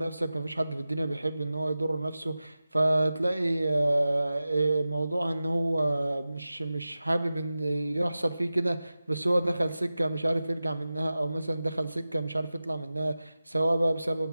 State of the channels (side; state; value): both; inverted; correlation -0.95